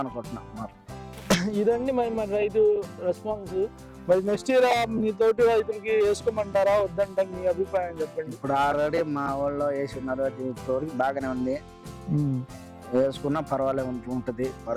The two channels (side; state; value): both; identical; correlation 1.00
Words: అనుకుంటున్నా. ఇదండి మరి రైతు రెస్పాన్స్. మరి నెక్స్ట్ ఇయర్ మీ తోటి రైతులకి వేసుకోమంటారా వద్దంటారు? మీ అభిప్రాయం చెప్పండి. ఇప్పుడు ఆల్రెడీ మా ఊళ్ళో వేసి ఉన్నారు, తోడికి బాగానే ఉంది. వేసుకున్నా పర్వాలేదు ఉంటది,